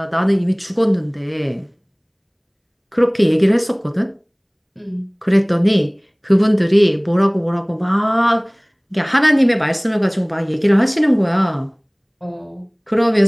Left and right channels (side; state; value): both; identical; correlation 1.00